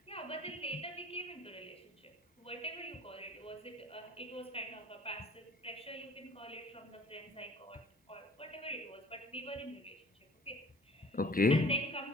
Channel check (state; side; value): normal; both; correlation 0.49